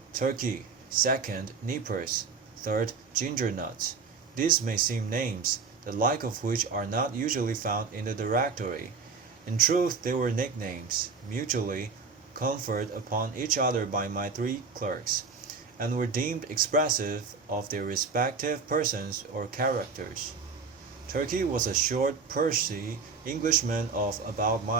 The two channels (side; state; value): left; quieter; 5.0 dB